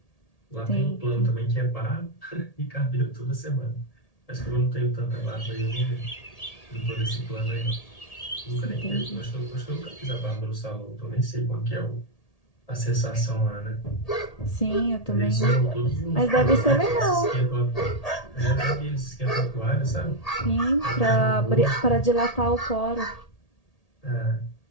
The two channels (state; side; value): late; right; 1.8 ms